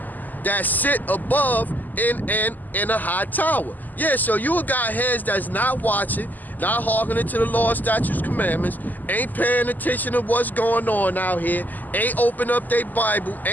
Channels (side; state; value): right; late; 0.084 ms